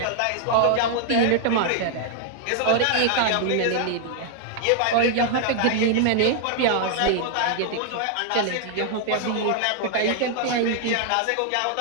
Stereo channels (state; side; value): different; both; correlation 0.00